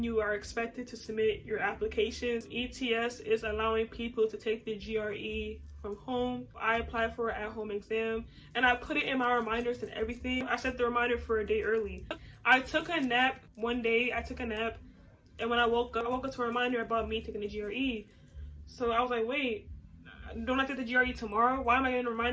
you are expected to submit your applications. ETS is allowing people to take the GRE from home. I applied for an at-home exam, and I put it in my reminders and everything. I set the reminder for a day early. I took a nap one day. And when I woke up to a reminder about me taking the GRE. So I was like, wait, don't I take the GRE tomorrow? Why am I getting a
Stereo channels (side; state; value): both; identical; correlation 1.00